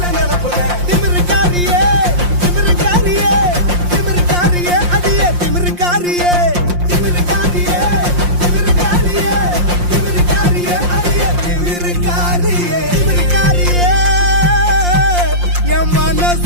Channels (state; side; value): late; left; 5.7 ms